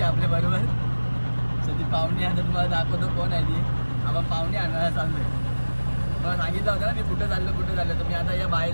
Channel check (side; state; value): both; inverted; correlation -1.00